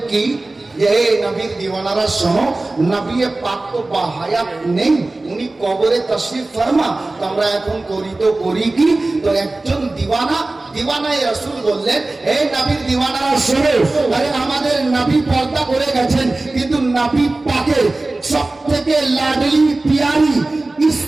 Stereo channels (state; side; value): quieter; left; 3.0 dB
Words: কি যে হে নবীর দিওয়ানারা শোনো, নবী পাক তো বাহায়াত নেই, উনি কবরে তশরিফ ফরমা। তো আমরা এখন করি তো করি কি? তো একজন দিওয়ানায়ে রাসূল বললেন, হে নবীর দিওয়ানারা শোনো, আরে আমাদের নবী পর্দা করে গেছেন, কিন্তু নবী পাকের সবথেকে লাডলি পিয়ারি